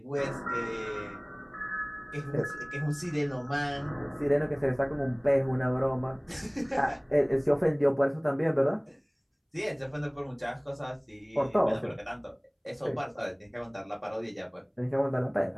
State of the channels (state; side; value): identical; both; correlation 1.00